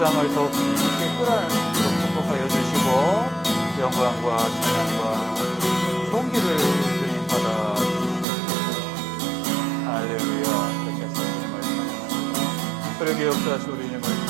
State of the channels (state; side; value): drops out; left; at 8.2 s